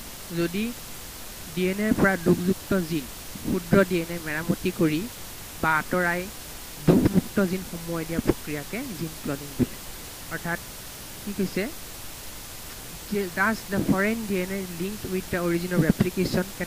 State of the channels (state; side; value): identical; both; correlation 1.00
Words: যদি ডিএনএৰ পৰা দুখযুক্ত জিন ক্ষুদ্ৰ ডিএনএ মেৰামতি কৰি বা আঁতৰাই দুখমুক্ত জিন সোমোৱাই দিয়া প্ৰক্ৰিয়াকে জিন ক্লনিং বোলে অৰ্থাৎ কি কৈছে Thus, the foreign DNA linked with the origin of replication can